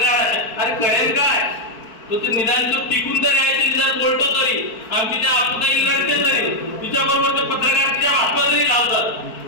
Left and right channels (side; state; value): right; late; 4.5 ms